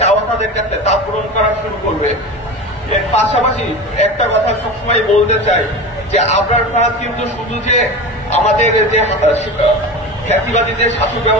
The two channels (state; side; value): normal; both; correlation 0.29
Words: চাওয়া তাদের কাছে তা পূরণ করা শুরু করবে। এর পাশাপাশি একটা কথা সবসময় বলতে চাই যে আবরার ফাহাদ কিন্তু শুধু যে আমাদের যে খ্যাতিবাদী যে শাসক